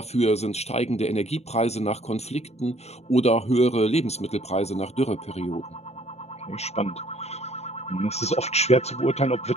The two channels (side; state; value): right; late; 0.31 ms